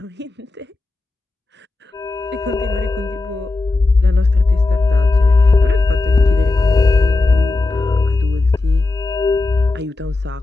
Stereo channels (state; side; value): quieter; right; 3.3 dB